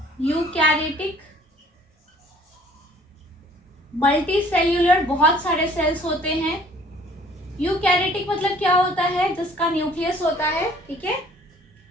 यूकैरियोटिक मल्टी सेल्यूलर, बहुत सारे सेल्स होते हैं। यूकैरियोटिक मतलब क्या होता है, जिसका न्यूक्लियस होता है, ठीक है।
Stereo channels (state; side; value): normal; both; correlation 0.55